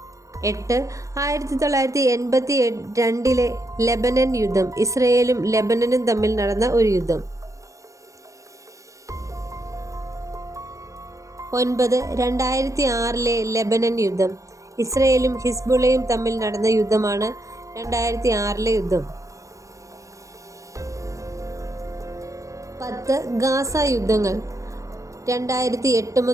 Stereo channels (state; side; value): late; left; 0.15 ms